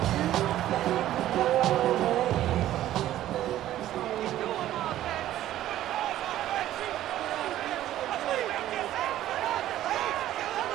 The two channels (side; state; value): left; quieter; 13.3 dB